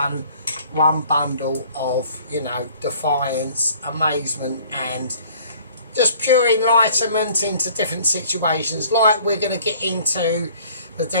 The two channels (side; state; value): both; inverted; correlation -0.54